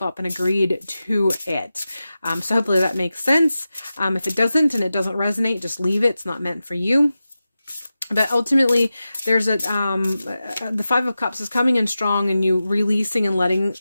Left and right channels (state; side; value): inverted; both; correlation -0.93